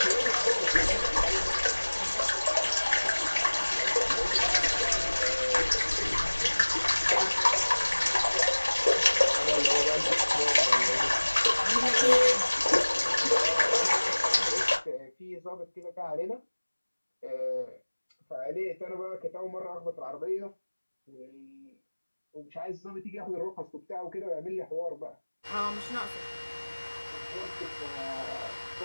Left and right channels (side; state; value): both; inverted; correlation -1.00